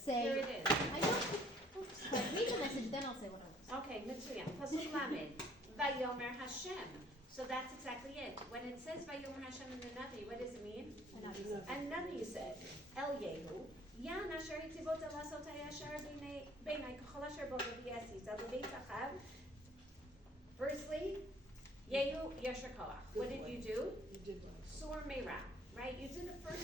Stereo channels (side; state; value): both; normal; correlation 0.58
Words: Here it is. I don't read the message, then I'll say what I want. Okay, Mitsuyan. Pasuk Lamed. Vayomer Hashem. So that's exactly it. When it says Vayomer Hashem in the Navi, what does it mean? And Navi said, El Yehu, Yan asher hitivot elasot hayashar b'nei kachol asher bo v'yesi zel b'beit achav. Firstly, Yehu yasher koach. What did you do? You did well. Sur meira, right? You did the